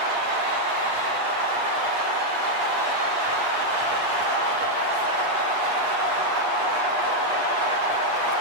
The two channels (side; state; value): left; late; 8.5 ms